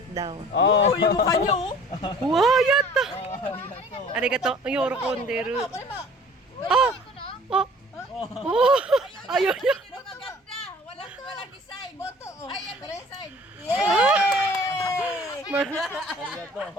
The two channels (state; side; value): normal; both; correlation 0.50